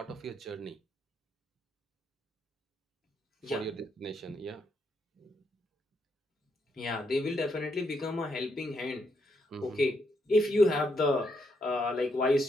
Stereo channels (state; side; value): normal; both; correlation 0.78